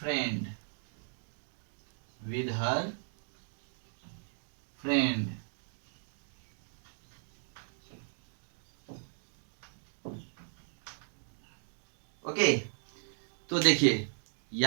with her friend। Okay, तो देखिए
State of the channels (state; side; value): silent; left; digital silence